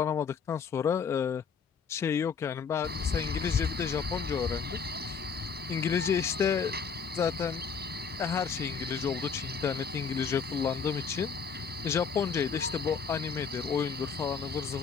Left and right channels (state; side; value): quieter; right; 6.1 dB